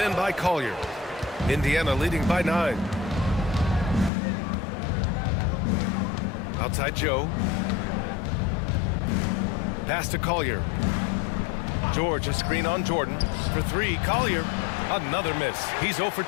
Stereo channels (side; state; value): right; drops out; at 4.1 s